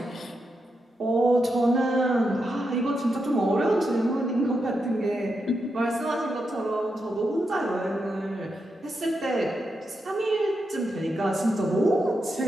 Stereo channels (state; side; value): normal; both; correlation 0.85